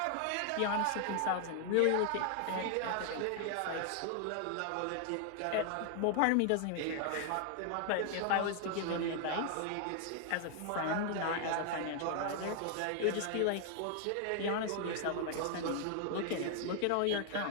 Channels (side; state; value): both; different; correlation 0.00